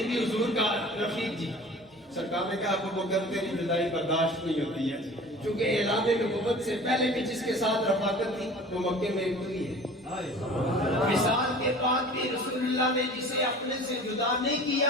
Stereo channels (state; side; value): normal; both; correlation 0.43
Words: بھی حضور کا رفیق جی سرکار نے کہا ابو بکر تیری جدائی برداشت نہیں ہوتی ہے، چونکہ اعلان نبوت سے پہلے بھی جس کے ساتھ رفاقت تھی وہ مکے میں ہوئی ہے. مثال کے بعد بھی رسول اللہ نے جسے اپنے سے جدا نہیں کیا،